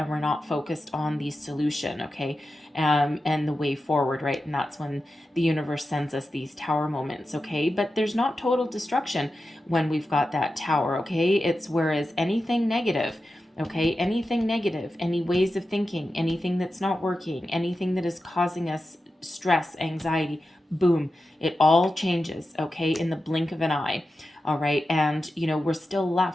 we're not focused on the solution, okay? And the way forward, right? And that's when the universe sends us these tower moments, okay? But there's not total destruction when we've got that tower, okay? It's whereas anything negative, okay, anything negative, any ways of thinking, anything that's not working, anything that is causing us stress, anxiety, boom, it all changes, okay, in the blink of an eye. All right. And, we're still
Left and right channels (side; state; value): both; normal; correlation 0.91